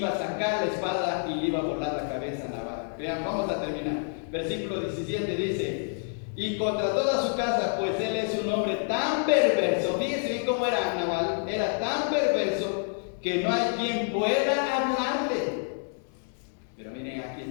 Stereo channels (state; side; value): silent; right; 59 dB below the other